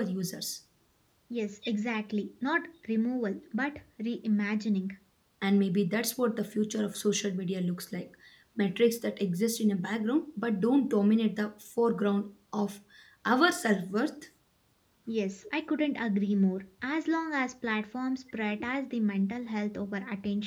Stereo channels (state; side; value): identical; both; correlation 1.00